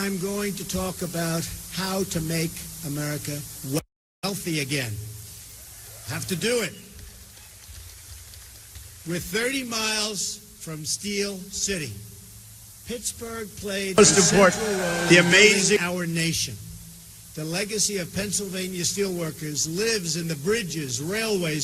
going to talk about how to make America wealthy again. Have to do it. We're 30 miles from Steel City. Pittsburgh played a central role in building our nation. The legacy of Pennsylvania steelworkers lives in the bridges,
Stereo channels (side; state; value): both; identical; correlation 1.00